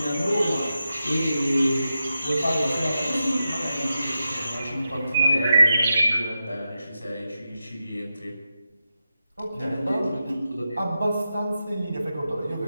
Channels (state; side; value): inverted; both; correlation -0.90